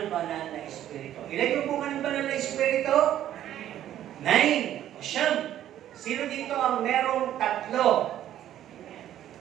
banal na Espiritu. Ilan yung bunga ng banal na Espiritu? 9. O siyam. Sino dito ang merong 3?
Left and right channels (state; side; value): quieter; left; 11.8 dB